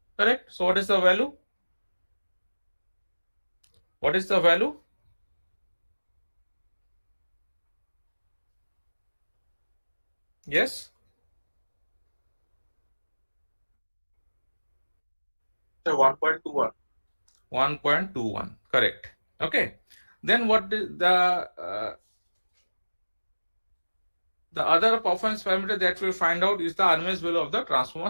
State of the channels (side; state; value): both; inverted; correlation -1.00